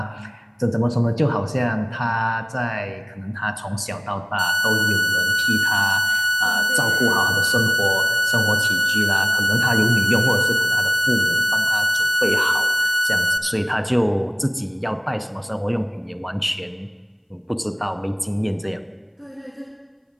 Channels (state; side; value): identical; both; correlation 1.00